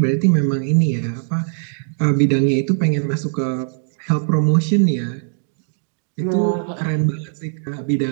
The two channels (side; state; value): left; silent; digital silence